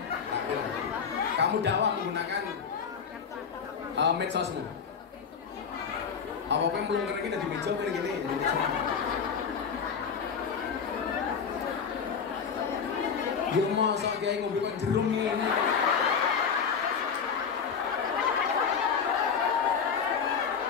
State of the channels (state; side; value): quieter; right; 6.4 dB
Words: Kamu dakwah menggunakan medsosmu. Apa yang belum kena kita di meja kayak gini. Ya masa kayak ngobrol kan jerum ini.